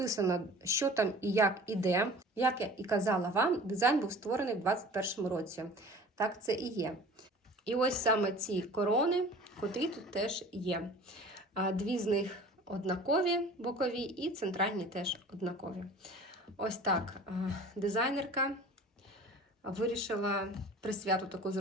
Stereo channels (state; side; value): normal; both; correlation 0.43